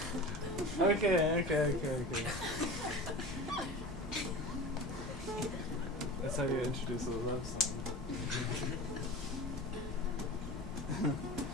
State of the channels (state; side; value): normal; both; correlation 0.33